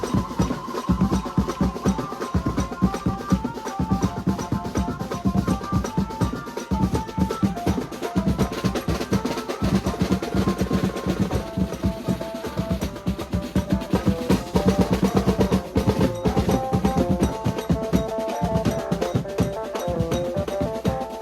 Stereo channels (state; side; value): identical; both; correlation 1.00